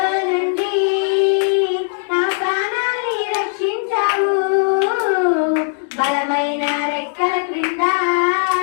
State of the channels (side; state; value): right; silent; digital silence